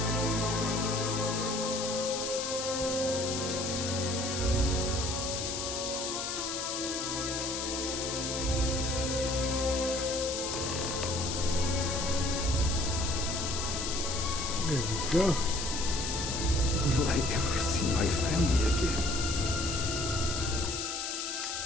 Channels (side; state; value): left; noise; hiss, 3 dB below the sound